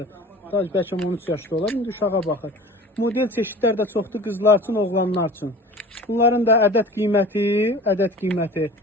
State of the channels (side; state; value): both; normal; correlation 0.41